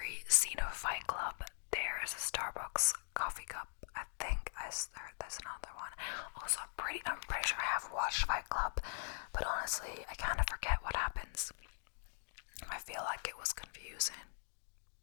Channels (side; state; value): right; silent; digital silence